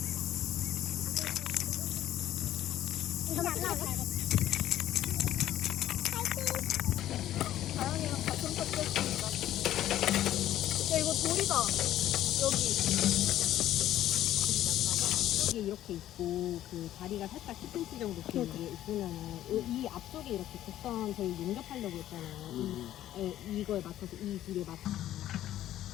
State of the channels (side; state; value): right; quieter; 12.9 dB